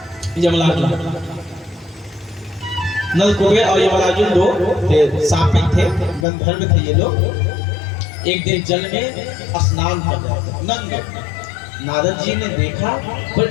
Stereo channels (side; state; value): right; drops out; at 6.2 s